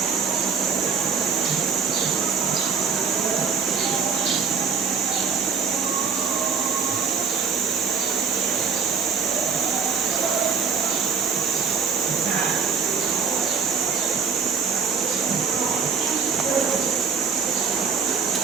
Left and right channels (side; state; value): left; quieter; 6.0 dB